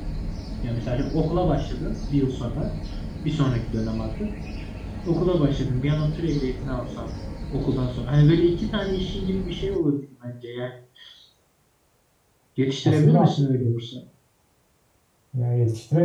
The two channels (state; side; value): identical; both; correlation 1.00